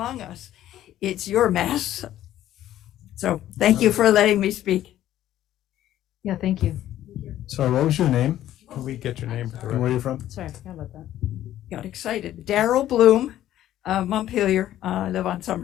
us. It's your mess. So thank you for letting me speak. Yeah, thank you. Sorry, what was your name? Can we get your name for the And record? where are you from? Sorry, I forgot about that. Got excited. Daryl Bloom, Montpelier. I live on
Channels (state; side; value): quieter; right; 12.8 dB